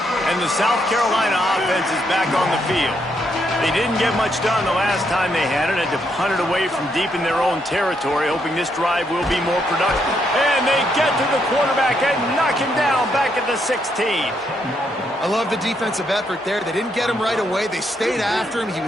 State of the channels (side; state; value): both; normal; correlation 0.76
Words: And the South Carolina offense is back on the field. They didn't get much done the last time they had it. Had to punt it away from deep in their own territory, hoping this drive will be more productive. And they get to the quarterback and knock him down back at the 16. I love the defensive effort there. They didn't get him right away. They stayed after him. He